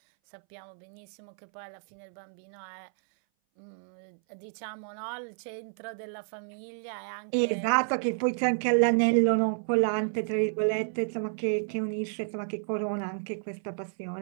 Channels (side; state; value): left; silent; 57 dB below the other